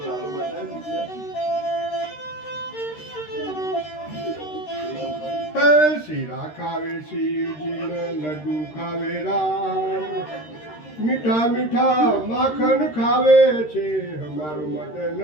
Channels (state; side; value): late; right; 13 ms